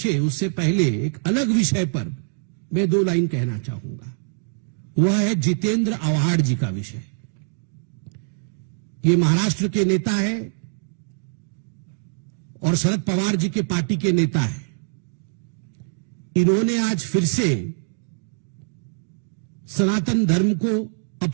उससे पहले एक अलग विषय पर मैं 2 लाइन कहना चाहूंगा। वह है जितेंद्र आव्हाड जी का विषय। ये महाराष्ट्र के नेता है और शरद पवार जी के पार्टी के नेता है। इन्होंने आज फिर से सनातन धर्म को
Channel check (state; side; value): silent; left; digital silence